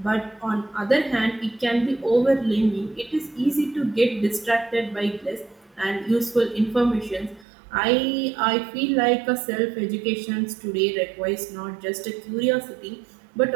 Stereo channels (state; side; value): drops out; left; at 7.5 s